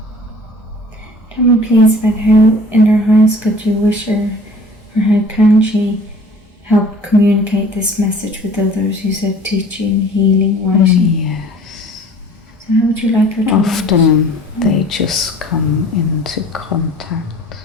Tell me please about how in her highest good you wish her, or how can she help communicate this message with others? You said teaching, healing, writing. Yes. So how would you like her to Often they just come into contact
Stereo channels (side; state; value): both; normal; correlation 0.48